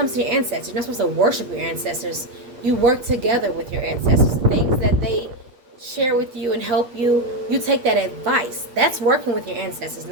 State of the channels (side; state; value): left; late; 8.5 ms